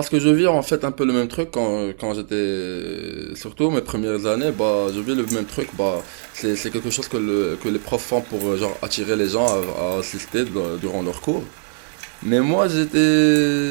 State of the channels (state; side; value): silent; left; digital silence